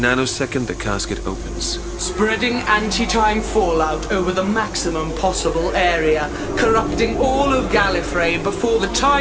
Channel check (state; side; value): identical; both; correlation 1.00